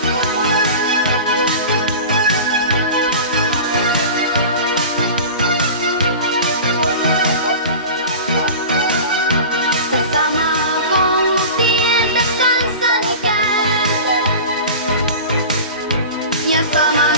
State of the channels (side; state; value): both; inverted; correlation -0.34